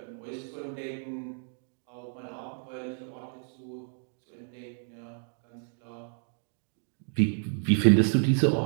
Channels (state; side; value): silent; left; digital silence